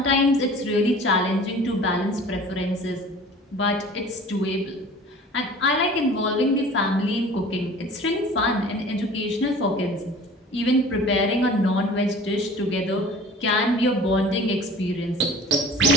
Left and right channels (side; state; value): both; normal; correlation 0.44